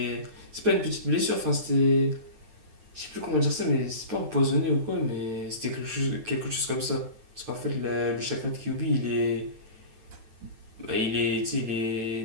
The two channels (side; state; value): left; late; 9.1 ms